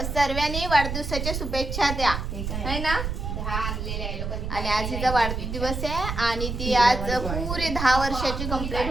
वाढदिवसाच्या शुभेच्छा द्या, है ना? आणि आज तिचा वाढदिवस आहे आणि ती आज पुरे 10 वर्षाची कंप्लीट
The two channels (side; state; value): right; noise; rumble, 4 dB below the sound